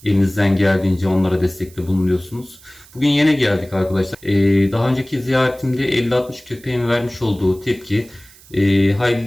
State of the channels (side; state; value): right; noise; hiss, 24 dB below the sound